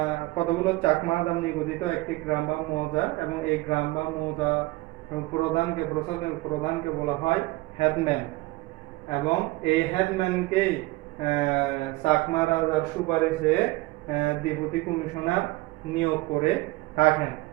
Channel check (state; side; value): quieter; left; 20.8 dB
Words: আদাম নিগঠিত একটি গ্রাম বা মৌজা, এবং এই গ্রাম বা মৌজা প্রধানকে বলা হয় হেডম্যান, এবং এই হেডম্যানকেই চাকমা রাজার সুপারিশে ডেপুটি কমিশনার নিয়োগ করে থাকেন,